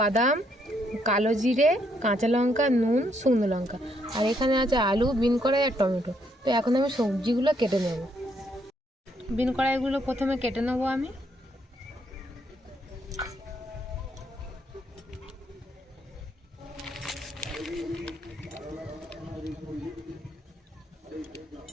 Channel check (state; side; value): normal; both; correlation 0.73